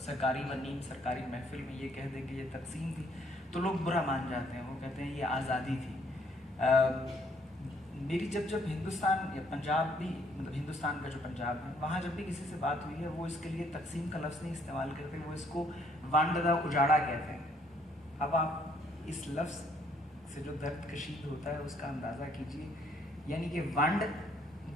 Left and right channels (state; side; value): normal; both; correlation 0.66